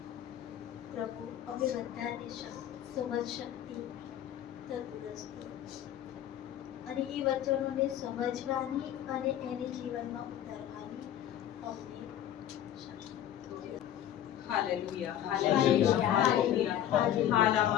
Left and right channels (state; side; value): quieter; right; 11.2 dB